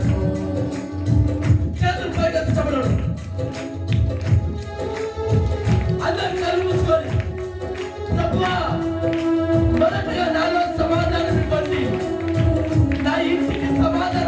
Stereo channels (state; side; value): identical; both; correlation 1.00